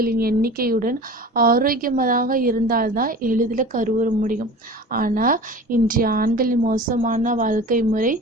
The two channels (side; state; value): both; normal; correlation 0.37